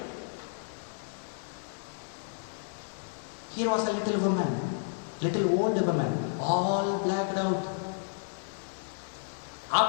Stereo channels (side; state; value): right; silent; 55 dB below the other